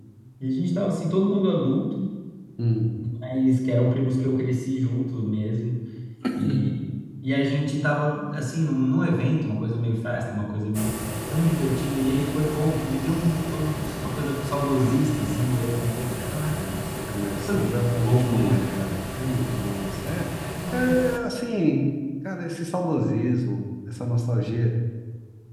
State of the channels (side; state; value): both; identical; correlation 1.00